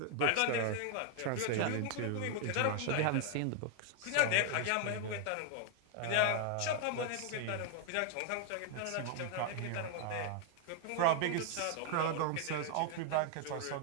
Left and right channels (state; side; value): different; both; correlation 0.00